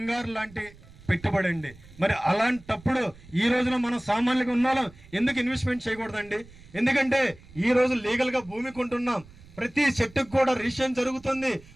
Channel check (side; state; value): right; noise; rumble, 22 dB below the sound